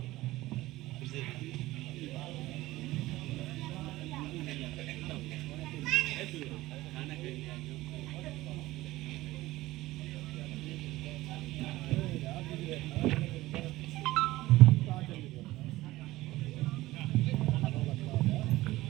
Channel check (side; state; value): left; quieter; 17.7 dB